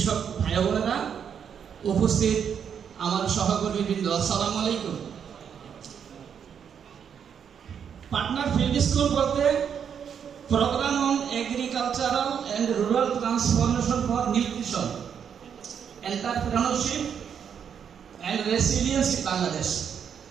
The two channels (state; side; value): quieter; left; 7.7 dB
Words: ভাই বোনেরা, উপস্থিত আমার সহকর্মী বৃন্দ, আসসালামু আলাইকুম। পাটনার ফিল্ড স্কুল বলতে program on agricultural and rural transformation for nutrition, entrepreneurship and resilience in Bangladesh.